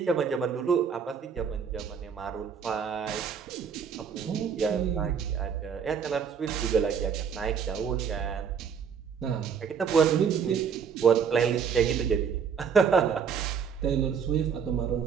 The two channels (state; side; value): quieter; left; 6.9 dB